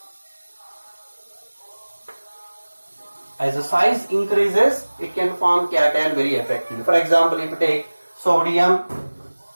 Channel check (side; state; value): both; inverted; correlation -1.00